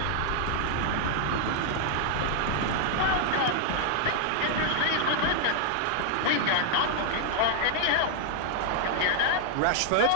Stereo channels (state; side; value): different; both; correlation 0.00